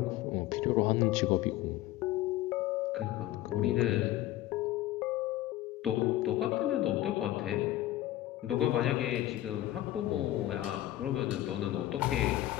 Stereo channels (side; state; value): right; quieter; 14.8 dB